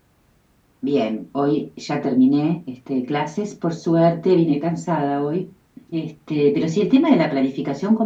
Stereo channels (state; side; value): identical; both; correlation 1.00